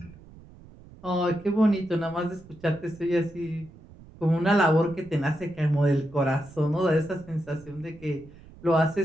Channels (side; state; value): right; noise; rumble, 21 dB below the sound